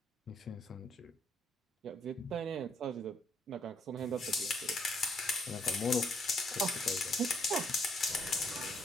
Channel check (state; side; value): normal; both; correlation 0.70